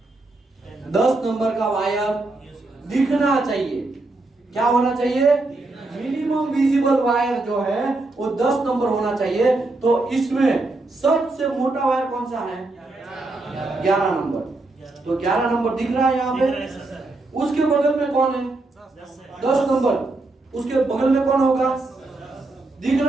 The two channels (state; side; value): quieter; left; 3.1 dB